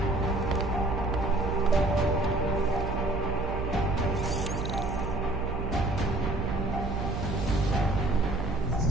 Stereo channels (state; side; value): noise; right; hum, 4 dB below the sound